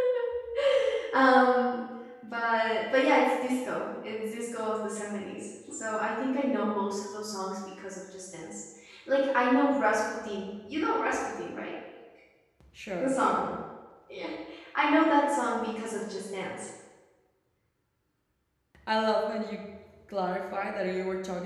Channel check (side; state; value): both; identical; correlation 1.00